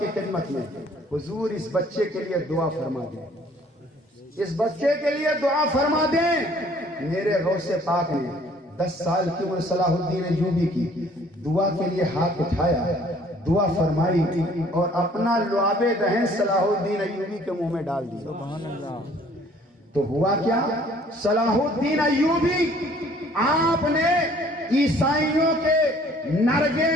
خدمت میں. حضور اس بچے کے لیے دعا فرما دیں، اس بچے کے لیے دعا فرما دیں. میرے غوث پاک نے 10 سال کی عمر صلاح الدین ایوبی کی دعا کے لیے ہاتھ اٹھایا، دعا فرمائی اور اپنا لعاب دہن صلاح الدین ایوبی کے منہ میں ڈال دیا. سبحان اللہ. تو ہوا کیا؟ صلاح الدین ایوبی آپ نے عیسائیوں کے نرگے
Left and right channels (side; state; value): both; normal; correlation 0.57